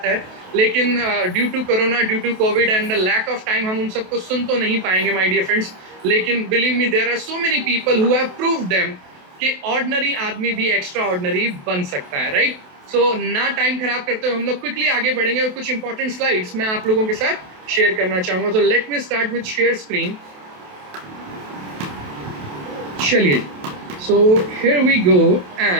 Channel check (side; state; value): left; late; 28 ms